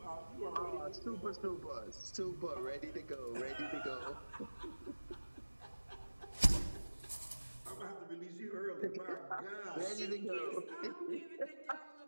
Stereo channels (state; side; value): inverted; both; correlation -1.00